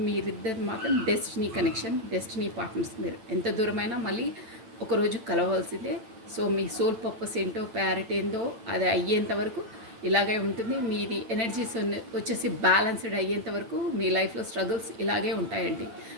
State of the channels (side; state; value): left; late; 9.0 ms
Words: మీరిద్దరు మాత్రం డెస్టినీ కనెక్షన్, డెస్టినీ పార్ట్నర్స్. మీరు ఎంత దూరమైనా మళ్ళీ ఒకరోజు కలవవలసిందే. సో మీ సోల్ పర్పస్ ఏంటో, ప్యారెట్ ఏందో అది అయ్యేంత వరకు ఇలాగే ఉంటుంది. మీది ఎనర్జీస్ వచ్చేసి బ్యాలెన్స్డ్ అయ్యేంత వరకు మీ లైఫ్లో స్ట్రగుల్స్ ఇలాగే ఉంటాయండి.